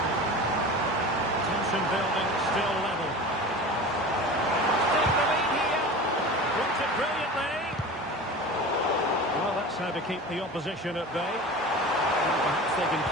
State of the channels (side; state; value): both; normal; correlation 0.34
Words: Tension building, still level. Take the lead here. Worked it brilliantly. Well, that's how to keep the opposition at bay. Perhaps they can